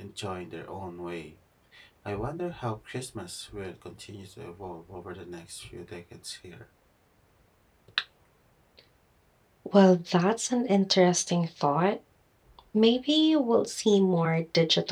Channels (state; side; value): identical; both; correlation 1.00